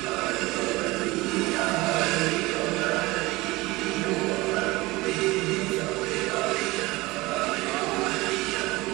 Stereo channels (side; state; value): left; quieter; 21.2 dB